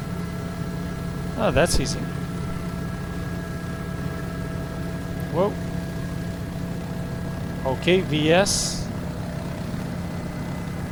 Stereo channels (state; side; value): identical; both; correlation 1.00